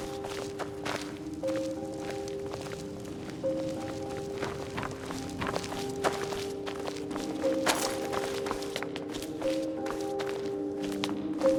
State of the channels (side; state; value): both; identical; correlation 1.00